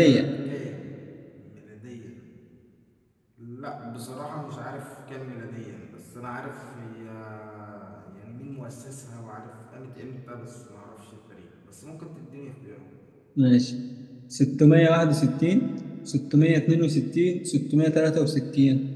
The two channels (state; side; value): identical; both; correlation 1.00